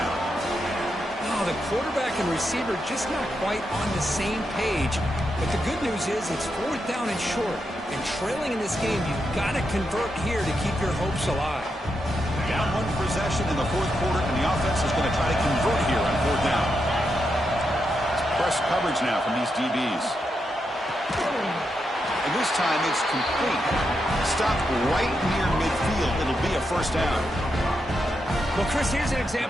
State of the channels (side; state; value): both; normal; correlation 0.84